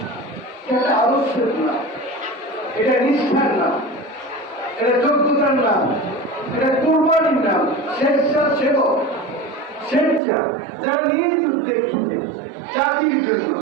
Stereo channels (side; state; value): left; drops out; at 10.2 s